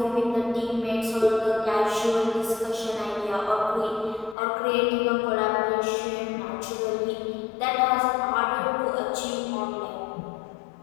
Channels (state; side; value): drops out; right; at 4.4 s